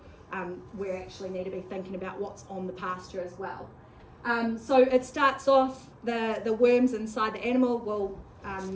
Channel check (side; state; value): both; identical; correlation 1.00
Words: we actually need to be thinking about what's on the pasture as well. So it starts off, the worms inside the animal